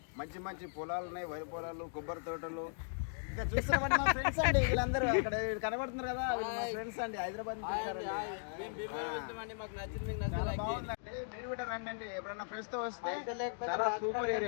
మంచి మంచి పొలాలు ఉన్నాయి, వరి పొలాలు, కొబ్బరి తోటలు. ఇంకా చూస్తున్నామండి మా ఫ్రెండ్స్ అండి వీళ్ళందరూ అక్కడ కనబడుతున్నారు కదా, మా ఫ్రెండ్స్ అండి హైదరాబాద్ నుంచి బాగుందండి. మీరు కూడా రండి, ఎప్పుడన్నా ఫ్రెండ్స్ తో వస్తే చాలా సూపర్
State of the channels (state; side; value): silent; right; digital silence